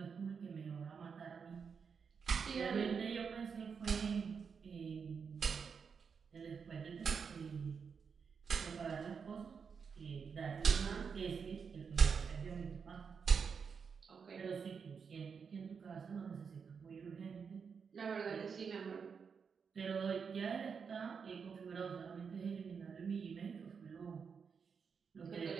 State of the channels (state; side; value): quieter; left; 6.1 dB